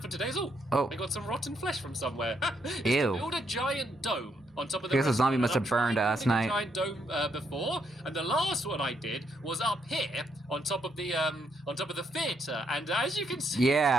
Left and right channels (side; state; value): both; normal; correlation 0.76